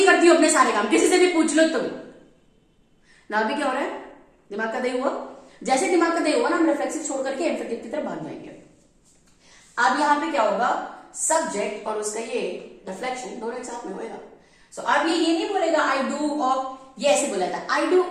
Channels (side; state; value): both; identical; correlation 1.00